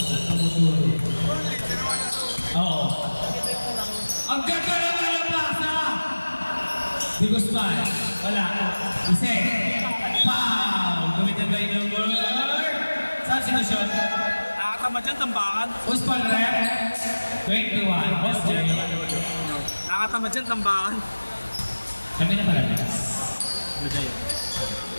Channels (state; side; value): inverted; both; correlation -1.00